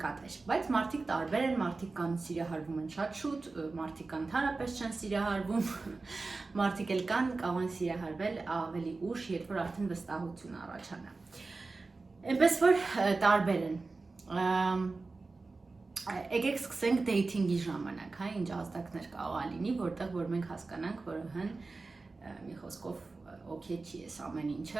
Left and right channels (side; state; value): left; quieter; 3.7 dB